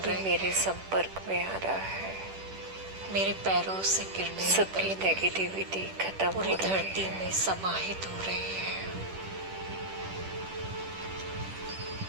भी रहे मेरे हैं। संपर्क में आ रहा है मेरे पैरों से किरणें सबकी निकल नेगेटिविटी खत्म पूरी हो रही धरती है। में समाहित हो रही है।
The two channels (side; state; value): left; late; 10 ms